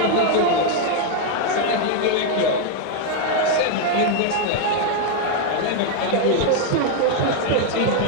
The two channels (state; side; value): different; both; correlation 0.00